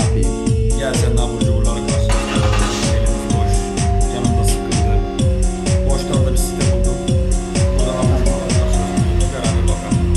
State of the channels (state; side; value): identical; both; correlation 1.00